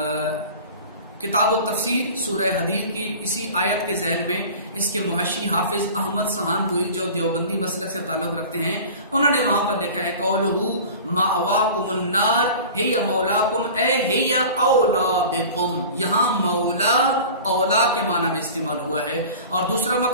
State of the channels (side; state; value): both; inverted; correlation -0.39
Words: کتاب التفسیر سورہ حدید کی اسی آیت کے ذیل میں اس کے محشی حافظ احمد سہانپوری جو دیوبندی مسلک سے تعلق رکھتے ہیں، انہوں نے وہاں پر لکھا ہے قولہ مأواکم النار ہی مولاکم اے ہی اولا بکم. یہاں مولا اولا کے معنی میں استعمال ہوا ہے. اور دوسرا